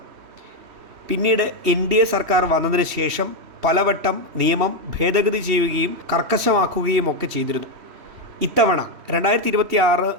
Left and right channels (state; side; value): late; left; 3.1 ms